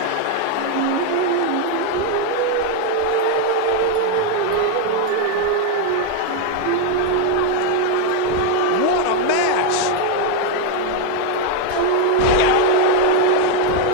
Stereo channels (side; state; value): both; different; correlation 0.01